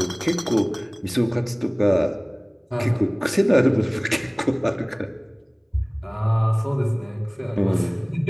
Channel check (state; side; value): identical; both; correlation 1.00